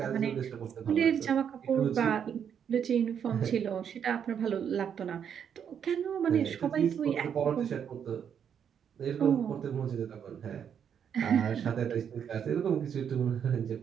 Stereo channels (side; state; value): left; quieter; 8.1 dB